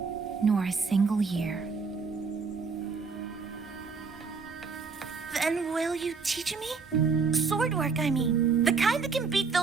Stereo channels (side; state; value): left; quieter; 5.0 dB